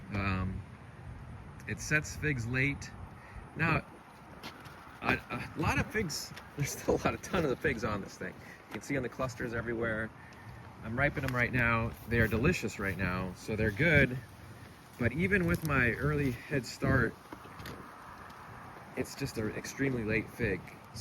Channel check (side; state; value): both; identical; correlation 1.00